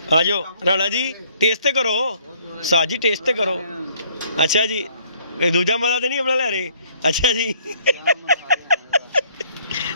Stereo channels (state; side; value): inverted; both; correlation -0.62